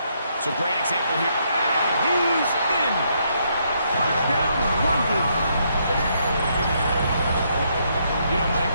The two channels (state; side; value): inverted; both; correlation -0.74